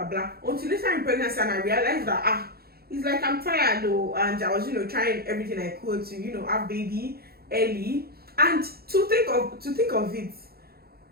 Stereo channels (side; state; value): left; late; 0.45 ms